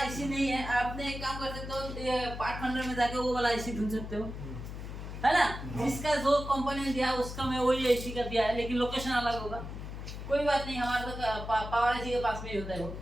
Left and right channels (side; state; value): left; noise; hum, 8 dB below the sound